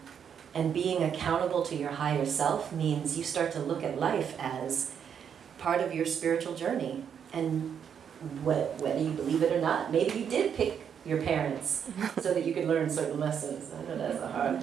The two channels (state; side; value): quieter; left; 8.0 dB